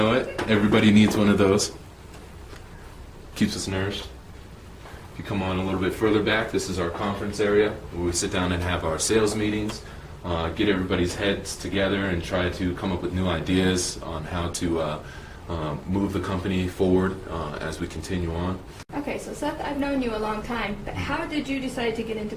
it. Everybody needs one of those. Keeps us nourished. If you come on a little bit further back, this is our conference area where we sit down and have our sales meetings, get everybody's heads together and try to come up with new ideas on how to move the company forward as we continue on. Okay, so Seth, I've known you a long time, but how did you decide to get into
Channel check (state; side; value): identical; both; correlation 1.00